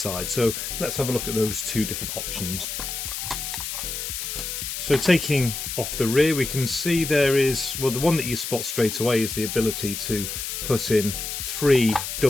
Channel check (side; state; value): left; noise; hiss, 5 dB below the sound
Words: So let's have a look at those two different options. So taking off the rear, we can see there is, well, the one that you spot straight away is the ability to put in 3